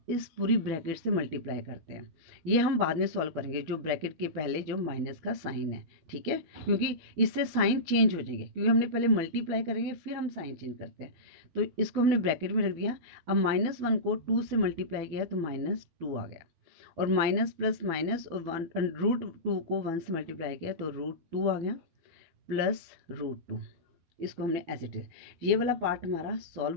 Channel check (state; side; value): late; left; 12 ms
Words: इस पूरी ब्रैकेट से मल्टीप्लाई करते हैं, ये हम बाद में सॉल्व करेंगे, जो ब्रैकेट के पहले जो माइनस का साइन है, ठीक है, क्योंकि इससे साइन चेंज हो जाएंगे, क्योंकि हमने पहले मल्टीप्लाई करेंगे फिर हम साइन चेंज करते हैं। तो इसको हमने ब्रैकेट में रख दिया। अब -1 को 2 से मल्टीप्लाई किया तो -2 आ गया, और माइनस प्लस माइनस, और √2 को 1 से मल्टीप्लाई किया तो √2 आ गया, प्लस √2। इसको हमने एज इट इज, ये वाला पार्ट हमारा